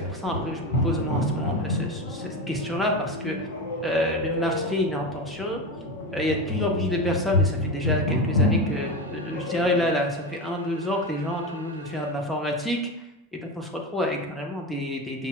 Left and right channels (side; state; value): both; normal; correlation 0.20